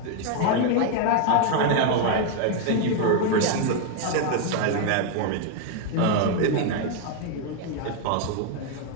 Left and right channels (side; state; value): both; different; correlation 0.00